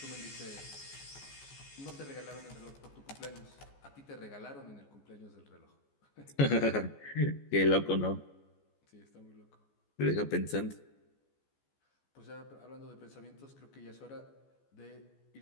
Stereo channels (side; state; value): right; late; 14 ms